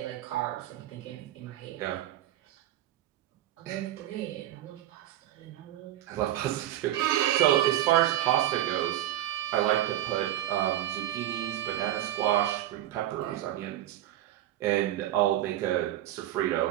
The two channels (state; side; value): quieter; left; 13.4 dB